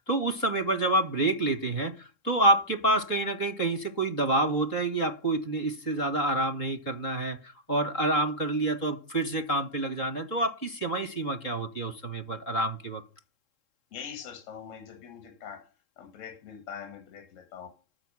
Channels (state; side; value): late; right; 3.7 ms